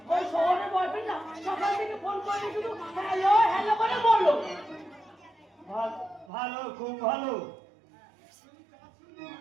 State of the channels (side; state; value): left; drops out; at 6.3 s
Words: ওই শহরের বয়ফ্রেন্ড না সকাল থেকে ফোন করে শুধু হ্যালো হ্যালো করে বললো। ভালো, খুব ভালো।